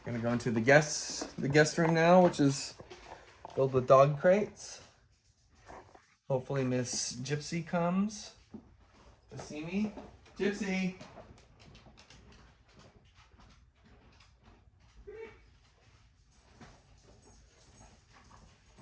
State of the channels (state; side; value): identical; both; correlation 1.00